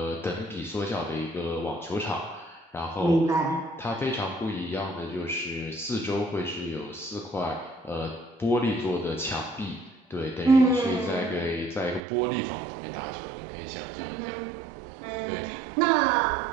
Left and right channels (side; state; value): left; drops out; at 12.0 s